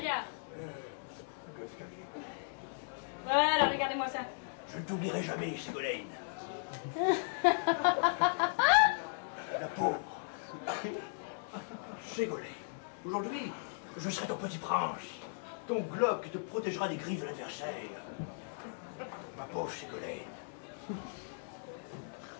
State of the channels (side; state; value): right; silent; digital silence